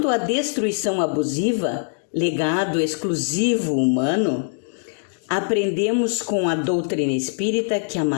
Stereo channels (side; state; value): right; silent; digital silence